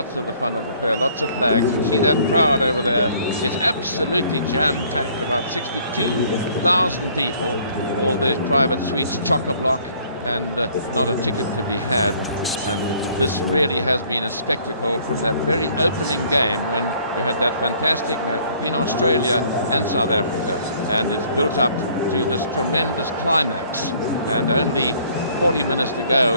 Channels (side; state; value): both; inverted; correlation -0.59